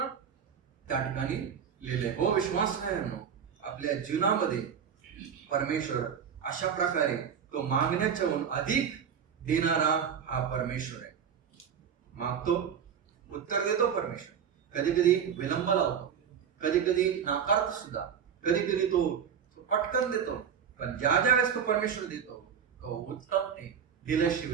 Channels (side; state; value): left; quieter; 7.7 dB